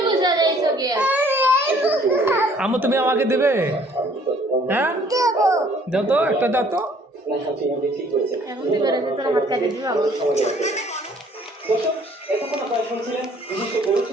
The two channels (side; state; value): both; normal; correlation 0.58